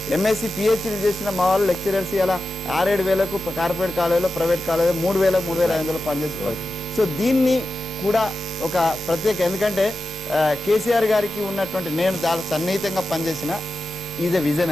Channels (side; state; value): both; normal; correlation 0.92